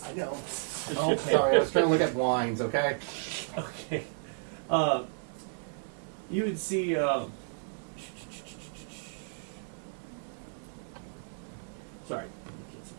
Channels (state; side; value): silent; left; digital silence